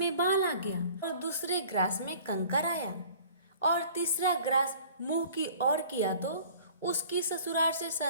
बाल आ गया और दूसरे ग्रास में कंकर आया और तीसरा ग्रास मुंह की ओर किया तो उसकी ससुराल से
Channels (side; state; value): both; inverted; correlation -0.49